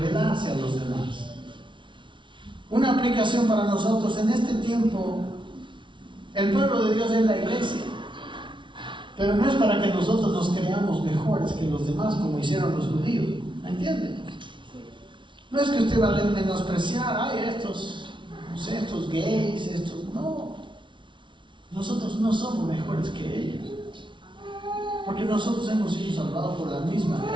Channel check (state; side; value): late; left; 0.24 ms